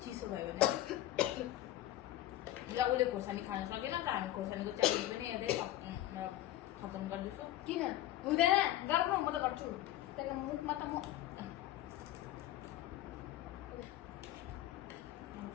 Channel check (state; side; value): quieter; right; 14.2 dB